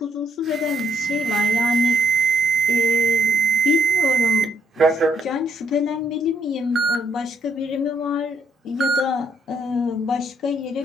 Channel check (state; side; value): normal; both; correlation 0.70